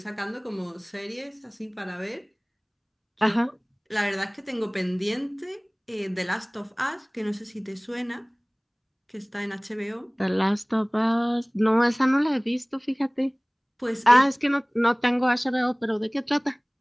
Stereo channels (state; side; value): identical; both; correlation 1.00